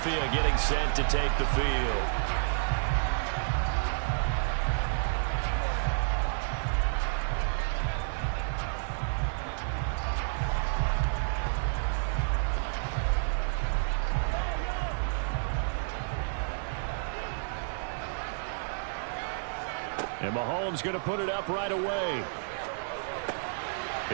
getting set to take the field. And Mahomes going to put it up right away.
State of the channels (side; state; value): left; silent; digital silence